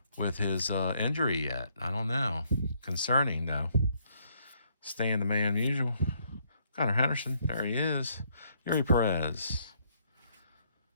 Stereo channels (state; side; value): inverted; both; correlation -0.70